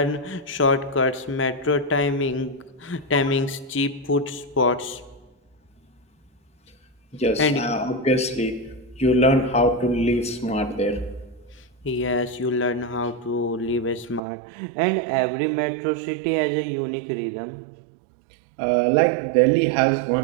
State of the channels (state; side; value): drops out; left; at 14.2 s